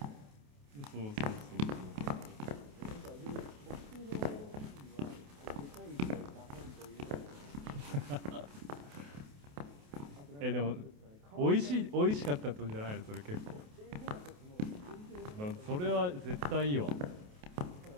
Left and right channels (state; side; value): late; left; 28 ms